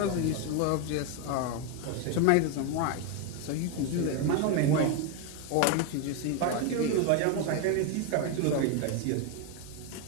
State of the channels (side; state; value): both; different; correlation 0.02